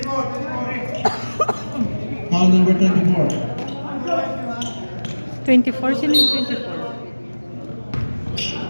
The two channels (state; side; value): inverted; both; correlation -1.00